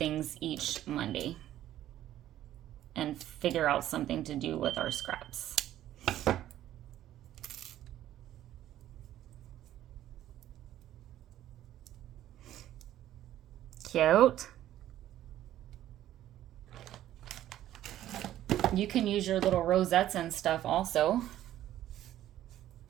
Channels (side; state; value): left; quieter; 12.8 dB